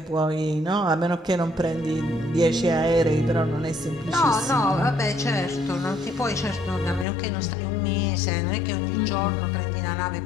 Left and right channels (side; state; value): right; drops out; at 7.1 s